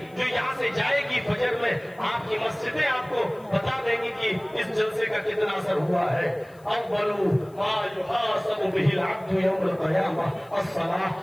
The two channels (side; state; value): left; noise; hiss, 29 dB below the sound